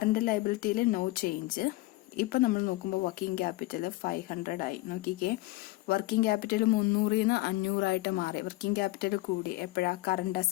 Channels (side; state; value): right; quieter; 19.1 dB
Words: ലയബിലിറ്റിയിൽ നോ ചേഞ്ച്. ഇപ്പൊ നമ്മൾ നോക്കുമ്പോൾ വർക്കിംഗ് ക്യാപിറ്റൽ 500 ആയി. നോക്കിക്കേ, വർക്കിംഗ് ക്യാപിറ്റൽ 300 500 ആയിട്ട് മാറി. വർക്കിംഗ് ക്യാപിറ്റൽ കൂടി എപ്പോഴാ, കറണ്ട്